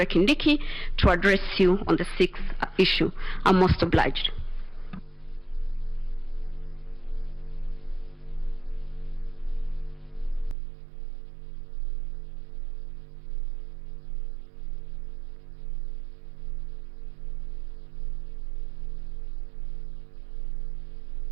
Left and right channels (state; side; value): drops out; left; at 10.6 s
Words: Kindiki, to address you on the 6th issue. I'm most obliged.